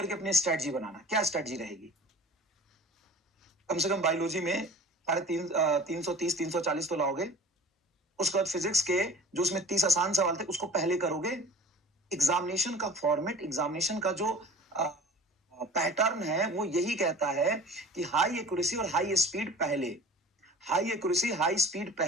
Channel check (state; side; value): normal; both; correlation 0.42